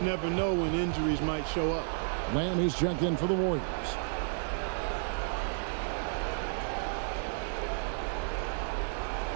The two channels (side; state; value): left; silent; digital silence